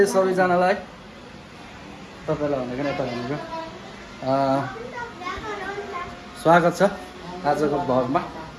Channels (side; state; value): both; identical; correlation 1.00